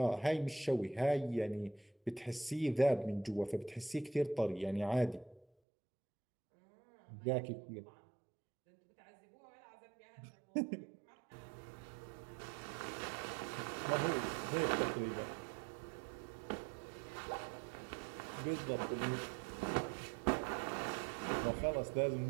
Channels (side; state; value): left; drops out; at 5.5 s